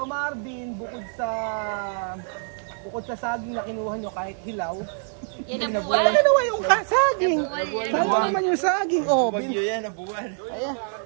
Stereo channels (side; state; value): left; silent; 62 dB below the other